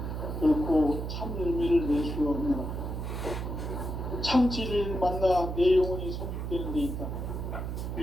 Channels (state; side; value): noise; right; hum, 4 dB below the sound